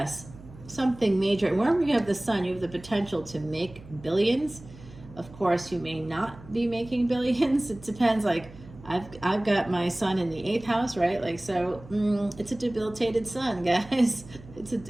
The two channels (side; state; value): right; noise; hum, 18 dB below the sound